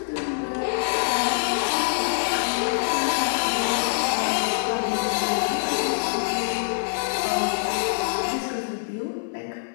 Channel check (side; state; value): right; silent; 57 dB below the other